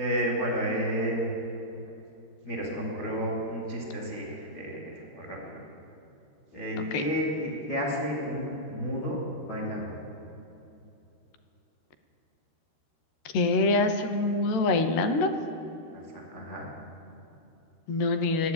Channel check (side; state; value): right; late; 13 ms